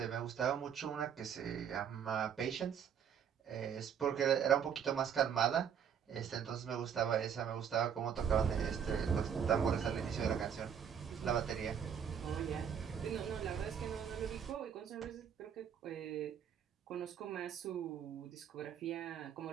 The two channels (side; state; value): left; quieter; 8.0 dB